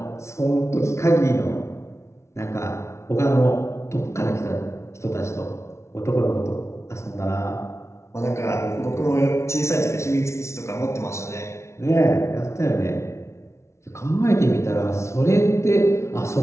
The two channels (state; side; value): late; right; 0.13 ms